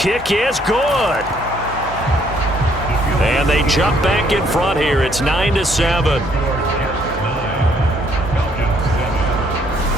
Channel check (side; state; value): both; normal; correlation 0.66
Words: is good. And they jump back in front here. It's 9-7.